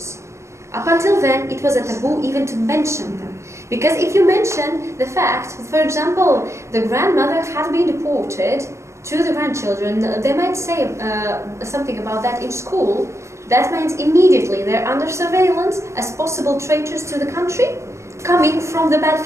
Up until then, it was a taboo even to mention them. Because if you mention the fact, for example, the grandmother had been deported to the grandchildren, they might say something about that in school. That means immediately they're under surveillance as possible traitors to the country, coming from the bad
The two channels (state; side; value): late; left; 0.14 ms